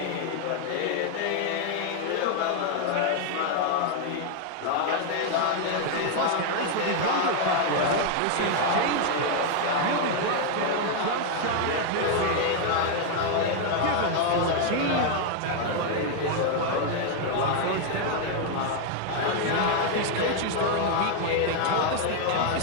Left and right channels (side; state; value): both; different; correlation 0.00